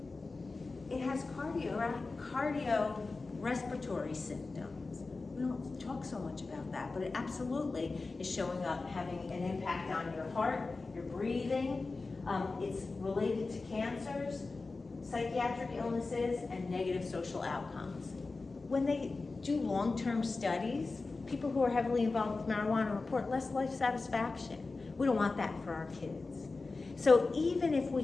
It has cardiorespiratory symptoms. We don't talk so much about that, but it absolutely is showing up, having an impact on your heart, your breathing. It's related to cancers, psychiatric illnesses, and negative social outcomes. When they do long-term studies, people who are heavily involved with marijuana report less life satisfaction. We don't want that for our kids. So even if we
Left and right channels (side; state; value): right; quieter; 3.8 dB